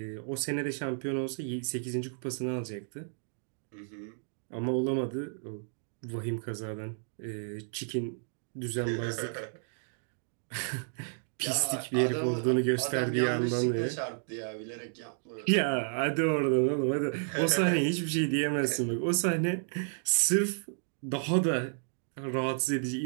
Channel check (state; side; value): silent; left; digital silence